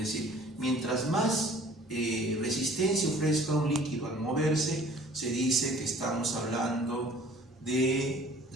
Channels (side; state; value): both; normal; correlation 0.52